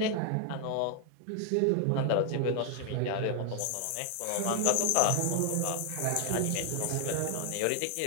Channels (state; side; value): different; both; correlation 0.00